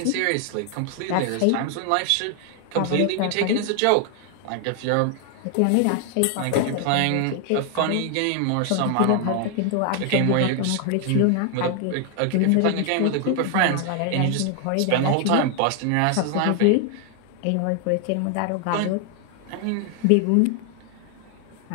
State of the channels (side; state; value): both; different; correlation 0.00